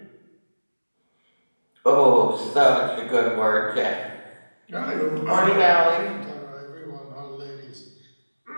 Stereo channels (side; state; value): both; inverted; correlation -1.00